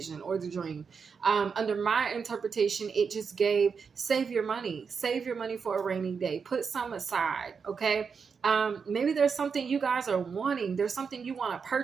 or the dream. Under my interpretation, it just gave, save your money for a rainy day. Put some aside, okay? Maybe there's something you guys are wanting. There's something you want to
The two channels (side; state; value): left; quieter; 5.8 dB